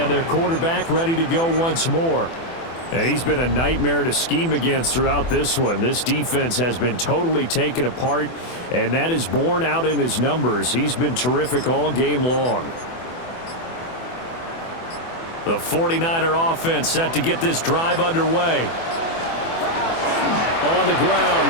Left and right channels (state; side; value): late; right; 24 ms